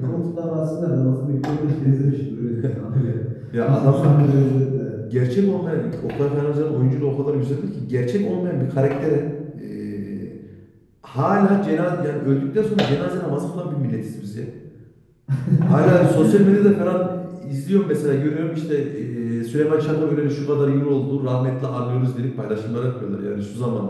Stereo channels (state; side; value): identical; both; correlation 1.00